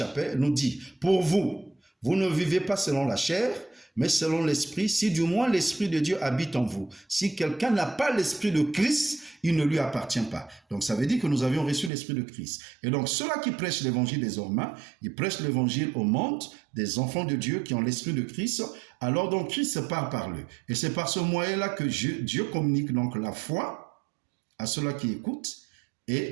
nous dit, « Pour vous, vous ne vivez pas selon la chair, mais selon l'esprit, si du moins l'esprit de Dieu habite en vous. Si quelqu'un n'a pas l'esprit de Christ, il ne lui appartient pas. » Donc ça veut dire que nous avions reçu l'esprit de Christ. Et donc ceux-là qui prêchent l'évangile désormais, ils prêchent l'évangile au monde des enfants de Dieu qui ont l'esprit de Christ. Alors donc Christ se parle par eux. Et c'est par ce moyen-là que Dieu communique donc la foi à ceux-là qui écoutent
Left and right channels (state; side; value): drops out; left; at 11.9 s